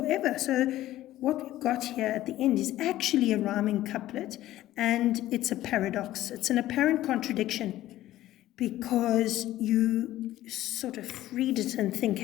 So what we've got here at the end is actually a rhyming couplet, and it's a paradox. It's an apparent contradiction. because you sort of read it and think,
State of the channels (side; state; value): right; quieter; 14.6 dB